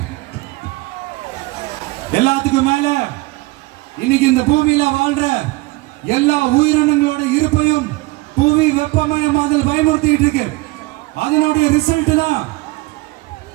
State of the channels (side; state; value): left; quieter; 22.0 dB